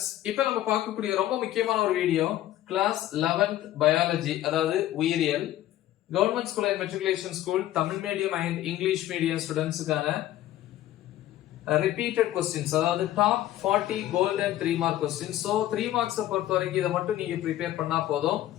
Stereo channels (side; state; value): right; quieter; 13.7 dB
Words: இப்போ நம்ம பார்க்கக்கூடிய ரொம்ப முக்கியமான ஒரு வீடியோ கிளாஸ் 11th பயாலஜி, அதாவது உயிரியல், government school and matriculation school, Tamil medium and English medium ஸ்டூடெண்ட்ஸுக்கான ரிப்பீட்டட் கொஸ்டின்ஸ், அதாவது top 40 golden 3 mark questions. So 3 மார்க்ஸை பொறுத்த வரைக்கும் இதை மட்டும் நீங்க ப்ரிப்பேர் பண்ணா போதும்,